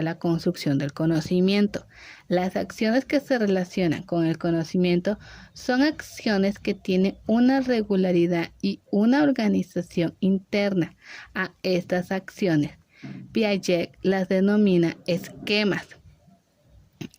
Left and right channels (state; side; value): identical; both; correlation 1.00